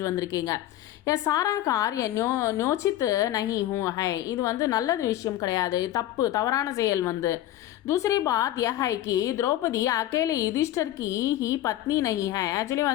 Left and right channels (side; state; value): right; quieter; 13.6 dB